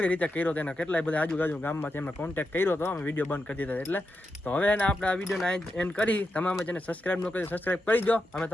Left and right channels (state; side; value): normal; both; correlation 0.87